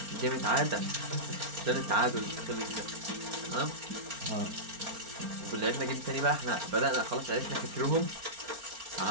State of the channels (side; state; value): left; late; 4.4 ms